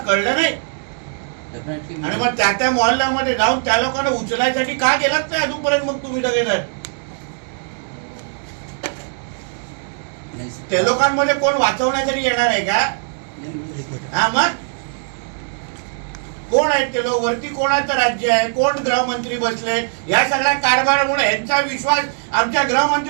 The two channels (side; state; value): left; silent; digital silence